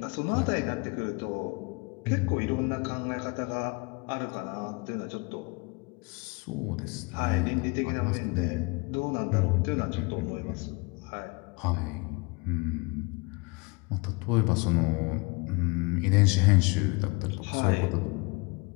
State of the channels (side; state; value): right; quieter; 28.7 dB